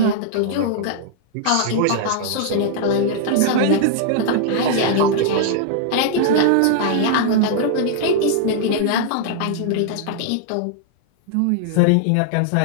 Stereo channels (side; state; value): both; different; correlation -0.01